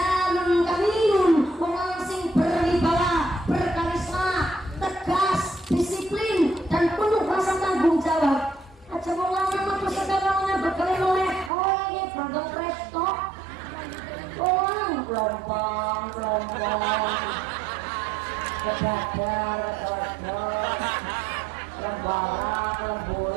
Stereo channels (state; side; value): drops out; left; at 11.5 s